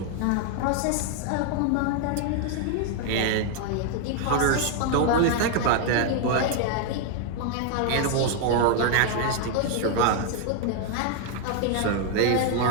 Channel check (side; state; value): both; different; correlation 0.00